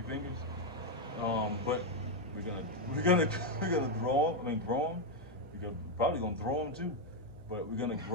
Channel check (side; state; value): left; noise; hum, 19 dB below the sound